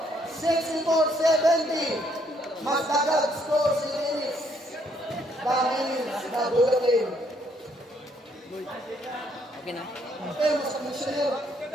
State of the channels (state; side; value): normal; both; correlation 0.69